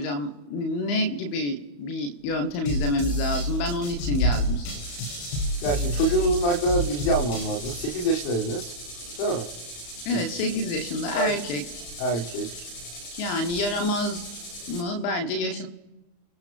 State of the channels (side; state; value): right; late; 35 ms